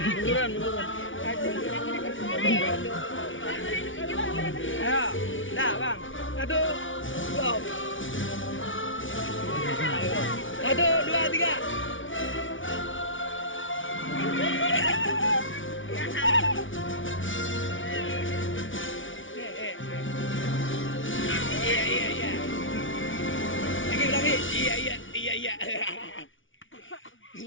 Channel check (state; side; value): late; right; 0.56 ms